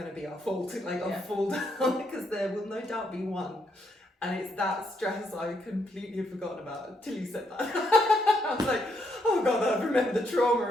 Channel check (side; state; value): both; normal; correlation 0.76